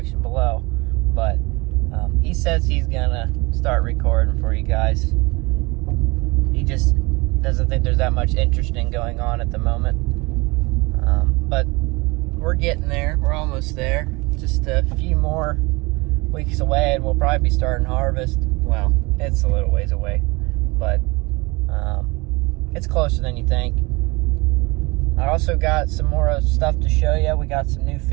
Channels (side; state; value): left; quieter; 24.9 dB